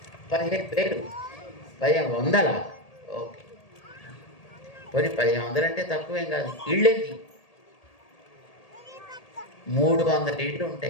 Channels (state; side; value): late; right; 1.8 ms